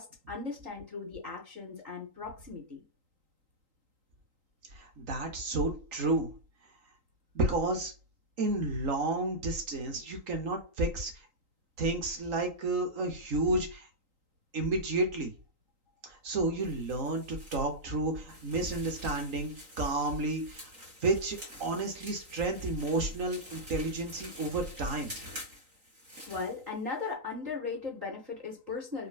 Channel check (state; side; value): late; left; 3.8 ms